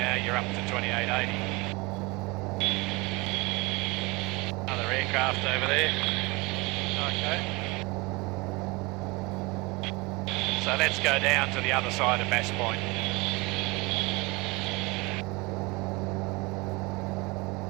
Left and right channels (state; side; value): quieter; left; 25.0 dB